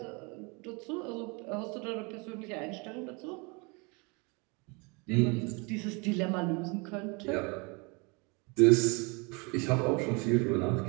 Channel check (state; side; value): quieter; left; 30.0 dB